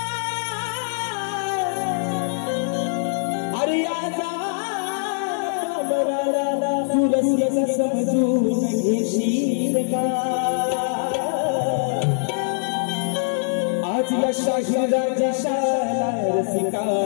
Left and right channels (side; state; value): right; silent; 64 dB below the other